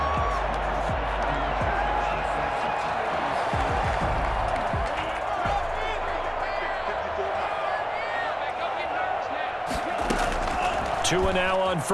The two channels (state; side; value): identical; both; correlation 1.00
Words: 2 now on